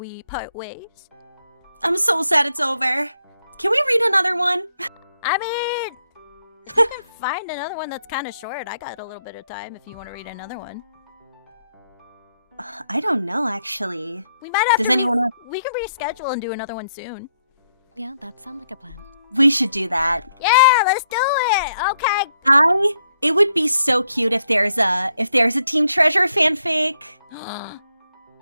part ways? I'm so sad it's over. Can we read another one? I mean, you can find another one that's kind of short. I got a little bit of time if you want to read another one. I don't know, actually. We might have Does to anyone we can reschedule and do another one soon. Yeah, that sounds like a plan. We should do that. Yeah, let's do it. Okay. It would be so cute if there's a Team Treasure fanfic.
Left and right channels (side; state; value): both; inverted; correlation -0.76